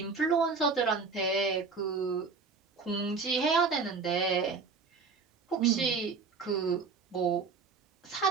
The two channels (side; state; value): left; quieter; 4.8 dB